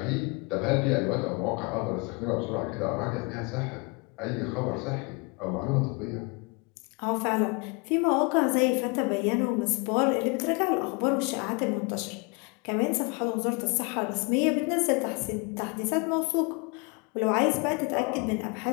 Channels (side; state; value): right; quieter; 29.9 dB